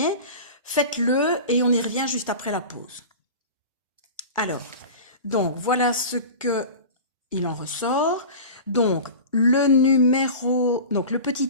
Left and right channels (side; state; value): both; inverted; correlation -0.34